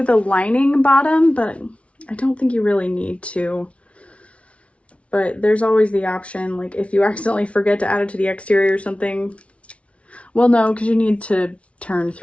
the lining bottom, but I don't think you really need to. But there's always the option, like if you accidentally forget to add it to the exterior or something. Well, no, because you need to turn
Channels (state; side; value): late; right; 0.062 ms